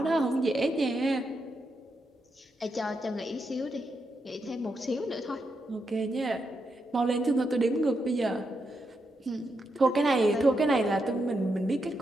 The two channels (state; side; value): normal; both; correlation 0.83